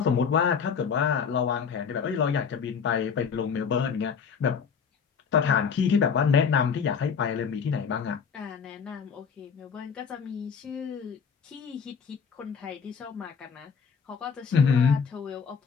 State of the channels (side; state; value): right; quieter; 6.4 dB